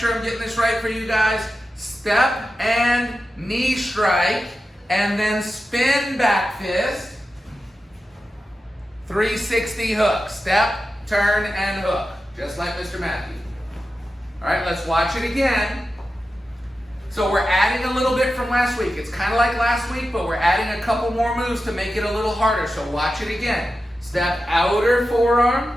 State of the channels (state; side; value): normal; both; correlation 0.92